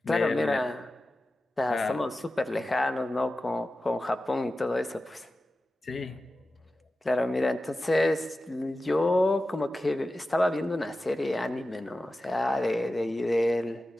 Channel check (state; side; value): normal; both; correlation 0.94